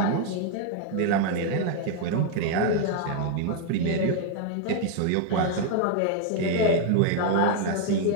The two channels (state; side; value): different; both; correlation 0.00